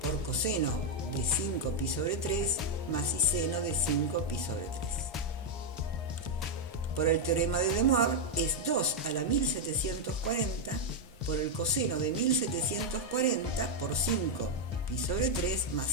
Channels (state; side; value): normal; both; correlation 0.00